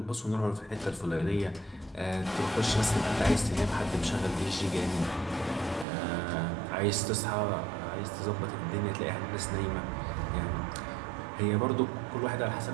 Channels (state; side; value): drops out; left; at 5.9 s